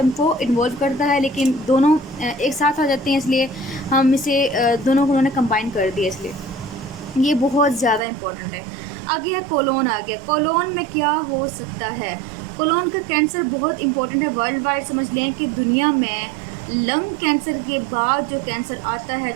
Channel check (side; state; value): left; drops out; at 8.0 s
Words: को इन्वॉल्व करता है, लेकिन दोनों एक साथ आ जाते हैं, इसलिए हम इसे दोनों को उन्होंने कंबाइन कर दिया, इसलिए ये बहुत ज़्यादा इंपॉर्टेंट है। आगे है कोलोन। आ गया, कोलोन में क्या हो सकता है। कोलोन का कैंसर बहुत इंपॉर्टेंट है वर्ल्ड वाइड, समझ लें कि दुनिया में लंग कैंसर के बाद जो कैंसर आता है